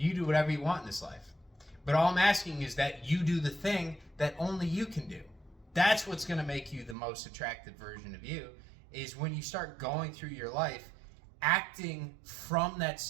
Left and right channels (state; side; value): drops out; left; at 7.0 s